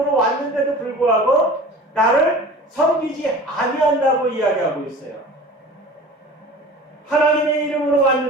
왔는데도 불구하고 나를 섬기지 아니한다고 이야기하고 있어요. 하나님의 이름으로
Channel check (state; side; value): normal; both; correlation 0.40